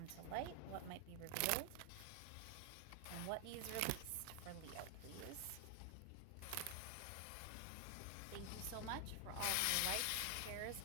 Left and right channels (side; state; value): both; different; correlation 0.00